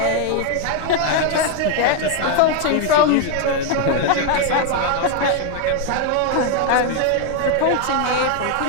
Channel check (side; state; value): both; different; correlation 0.01